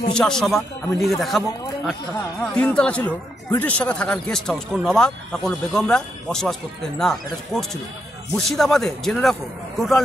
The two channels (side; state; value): both; normal; correlation 0.80